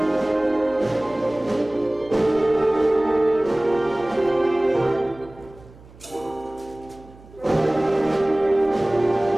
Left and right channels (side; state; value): right; noise; hum, 23 dB below the sound